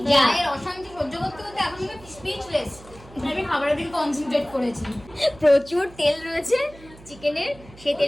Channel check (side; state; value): right; noise; hum, 21 dB below the sound